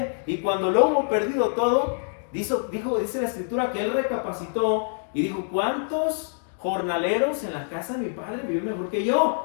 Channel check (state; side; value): silent; right; 61 dB below the other